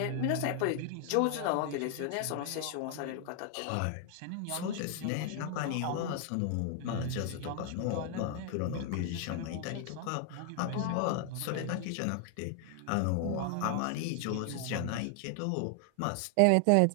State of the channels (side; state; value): both; different; correlation 0.00